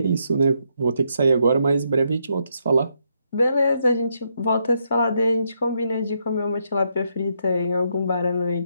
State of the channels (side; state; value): both; inverted; correlation -0.78